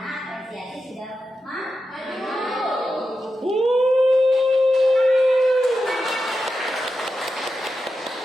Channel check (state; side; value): normal; both; correlation 0.89